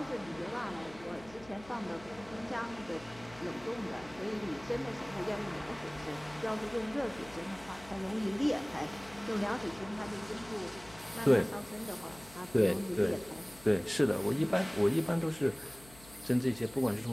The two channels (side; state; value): left; noise; hum, 21 dB below the sound